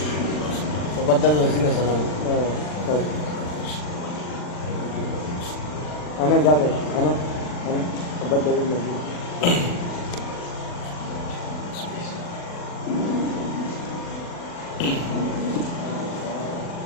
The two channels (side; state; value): right; late; 40 ms